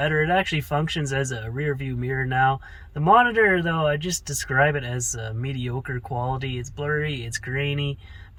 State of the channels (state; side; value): identical; both; correlation 1.00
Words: It actually functions as a rear view mirror now. The monitor, though, I just describe it as mediocre quality. It's blurry, it's grainy,